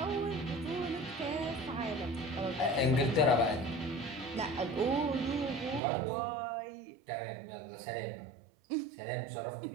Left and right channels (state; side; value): drops out; left; at 5.8 s